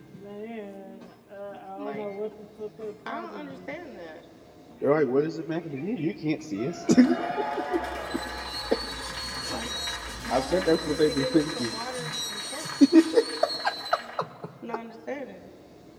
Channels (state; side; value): identical; both; correlation 1.00